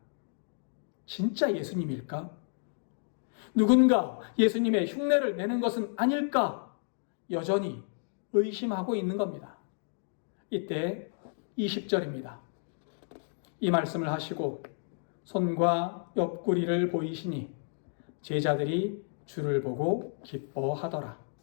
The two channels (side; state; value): right; silent; digital silence